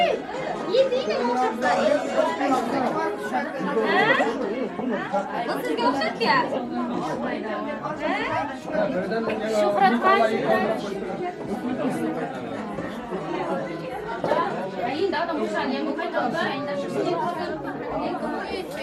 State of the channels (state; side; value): identical; both; correlation 1.00